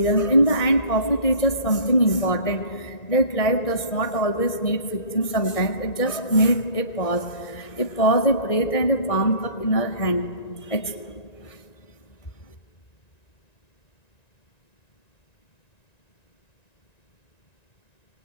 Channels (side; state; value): right; late; 1.9 ms